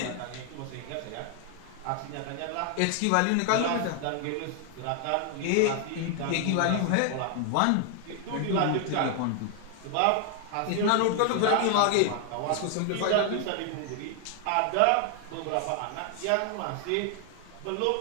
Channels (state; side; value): different; both; correlation 0.00